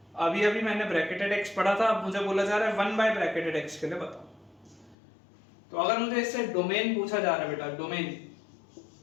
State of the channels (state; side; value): drops out; right; at 5.0 s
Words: अभी अभी मैंने ब्रैकेटेड x पढ़ा था, अब मुझे बोला जा रहा है 1 बाय ब्रैकेटेड x के लिए बताओ। तो अगर मुझे इससे डोमेन पूछा जा रहा है बेटा, डोमेन,